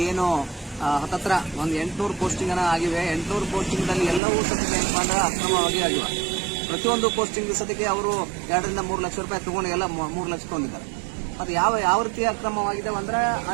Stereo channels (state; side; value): drops out; left; at 4.2 s